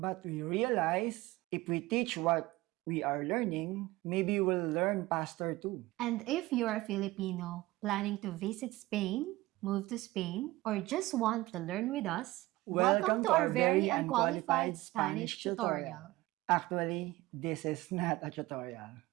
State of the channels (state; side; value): quieter; left; 18.8 dB